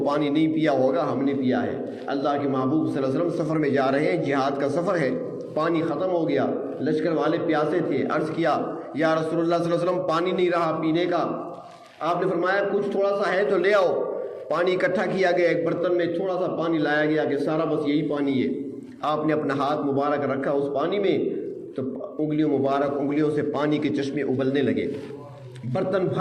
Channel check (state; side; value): identical; both; correlation 1.00